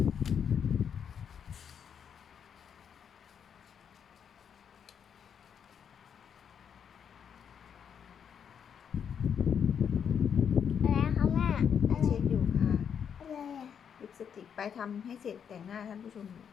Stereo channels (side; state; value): right; quieter; 7.7 dB